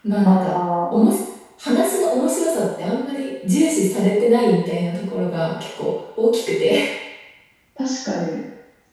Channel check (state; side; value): identical; both; correlation 1.00